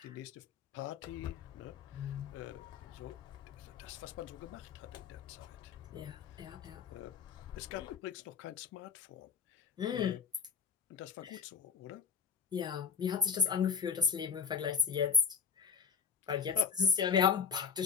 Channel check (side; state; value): right; quieter; 6.3 dB